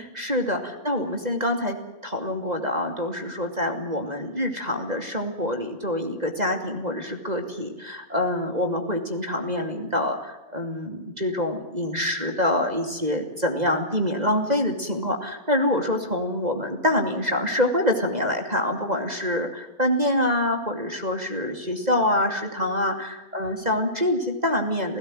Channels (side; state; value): left; late; 2.0 ms